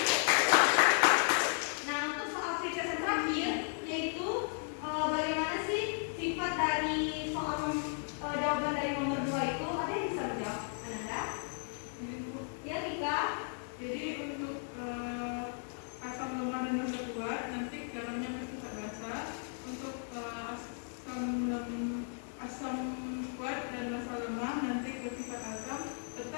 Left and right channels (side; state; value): right; silent; 54 dB below the other